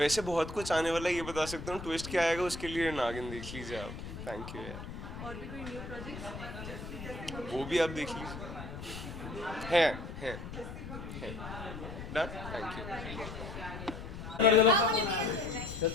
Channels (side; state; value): left; noise; rumble, 9 dB below the sound